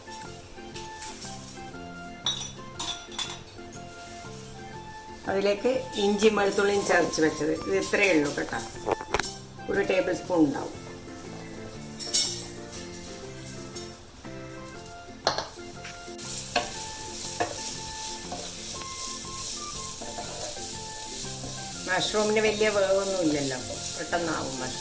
അതിലേക്ക് ഇഞ്ചി വെളുത്തുള്ളിയും ചതച്ച് വെച്ചത്, ഇത് ഇത്രയേ ഉള്ളൂ കേട്ടോ. 1 ടേബിൾ സ്പൂൺ ഉണ്ടാവും. മഷ്റൂമിന് വലിയ വേവൊന്നും ഇല്ലല്ലോ, പെട്ടെന്നാവും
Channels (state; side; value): identical; both; correlation 1.00